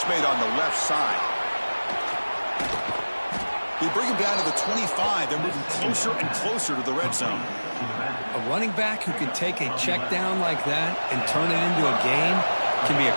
made on the left side. They bring him down to the 25. They're moving closer and closer to the red zone. A running back who can take a check down like that and turn it into a gain can be a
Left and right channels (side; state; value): both; inverted; correlation -1.00